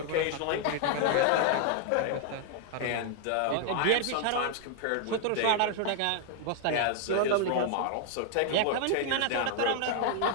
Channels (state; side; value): different; both; correlation 0.00